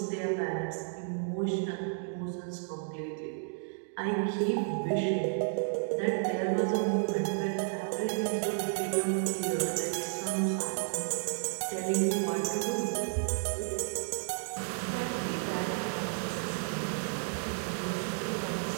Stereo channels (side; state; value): left; silent; digital silence